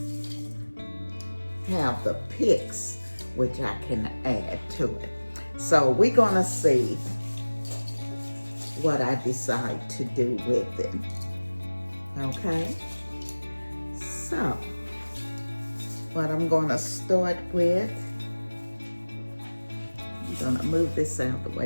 have the picks which I can add to it. So we're gonna see what I decide to do with it. Okay, so what I'm gonna start with, I'm gonna move this out of the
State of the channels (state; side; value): inverted; both; correlation -1.00